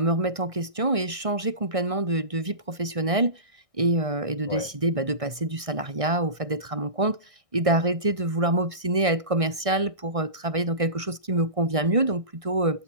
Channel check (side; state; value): left; late; 1.6 ms